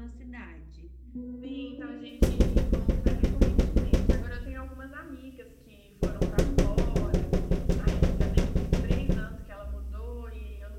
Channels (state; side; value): identical; both; correlation 1.00